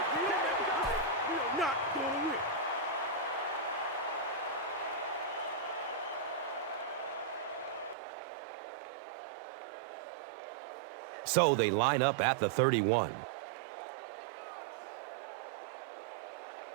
So they line up at the 31.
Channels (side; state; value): left; drops out; at 8.0 s